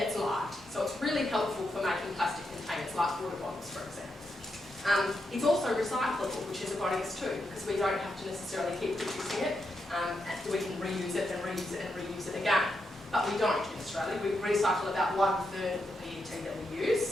light. So it's really helpful for making plastic containers like water bottles, for example. It's also recyclable, which is a bonus too, because we don't have to necessarily keep producing it. We can reuse it and reuse it and reuse it again. But we don't in Australia. We recycle about 1/3 of the PET that we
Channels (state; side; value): normal; both; correlation 0.84